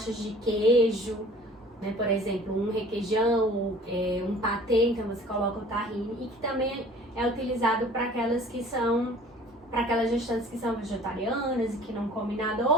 de queijo, né? Por exemplo, um requeijão, um patê, então você coloca o tahine, e que também é utilizado para aquelas gestantes que são vegetarianas e que não comem nada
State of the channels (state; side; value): normal; both; correlation 0.49